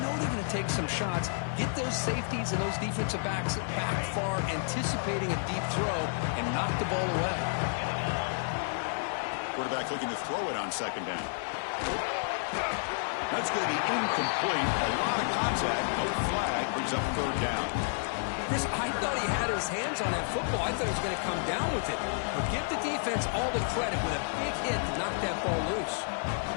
they're going to take some shots, get those safeties and those defensive backs back far, anticipating a deep throw, and knock the ball away. Quarterback looking to throw it on 2nd down. That's going to be incomplete. A lot of contact. No flag. Brings up 3rd down. Chris, I thought he had his hands on that football. I thought he was going to come down with it. But give the defense all the credit with a big hit to knock that ball loose.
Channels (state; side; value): silent; right; digital silence